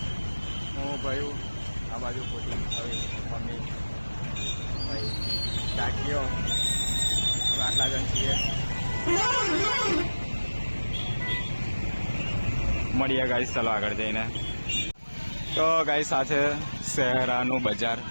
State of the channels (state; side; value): inverted; both; correlation -1.00